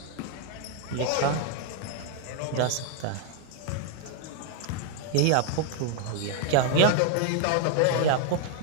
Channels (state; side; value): different; both; correlation 0.00